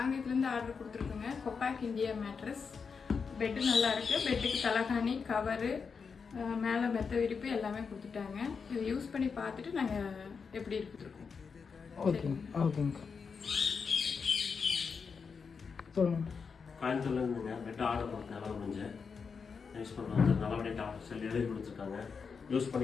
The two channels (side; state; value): right; quieter; 5.6 dB